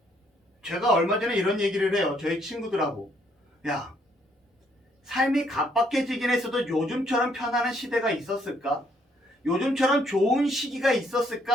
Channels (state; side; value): normal; both; correlation 0.69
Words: 제가 얼마 전에 이런 얘기를 해요. 저희 친구들하고. 야, 삶이 각박해지긴 했어도 요즘처럼 편안한 시대가 있었을까? 요즘처럼 좋은 시기가